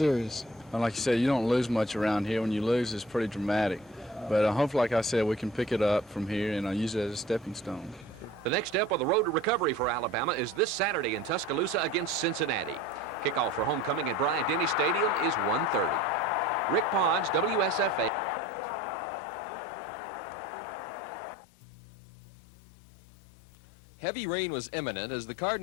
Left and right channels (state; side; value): drops out; right; at 18.1 s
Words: And like you said, you don't lose much around here. When you lose, it's pretty dramatic. But hopefully, like I said, we can pick it up from here and use it as a stepping stone. The next step on the road to recovery for Alabama is this Saturday in Tuscaloosa against Cincinnati. Kickoff for homecoming at Bryant-Denny Stadium is 1:30. Rick Ponds, WSFA TV Sports. Heavy rain was imminent as the